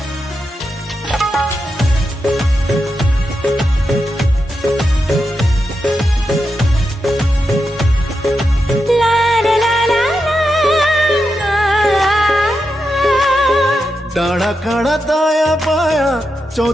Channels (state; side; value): normal; both; correlation 0.87